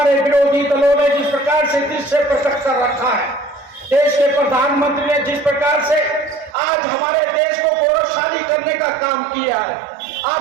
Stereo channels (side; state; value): left; drops out; at 6.6 s